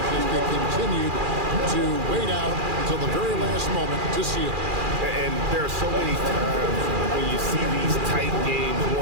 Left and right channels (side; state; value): left; late; 2.4 ms